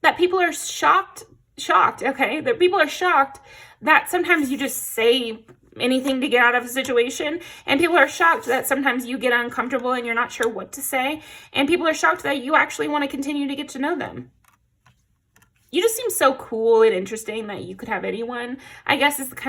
that people are shocked, okay? That people are shocked that sometimes you just say anything to get out of a situation, and people are shocked that sometimes you get uncomfortable and you're not sure what to say, and people are shocked that you actually want to continue to get to know them. You just seem so cool and interesting that you could have anyone, I guess, is the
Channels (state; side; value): identical; both; correlation 1.00